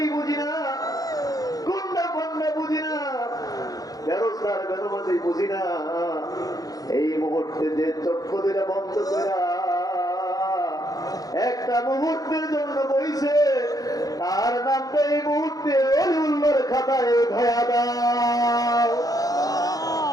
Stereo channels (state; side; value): late; right; 0.18 ms